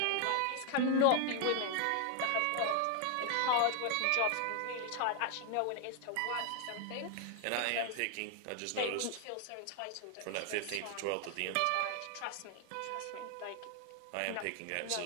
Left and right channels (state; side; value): different; both; correlation 0.00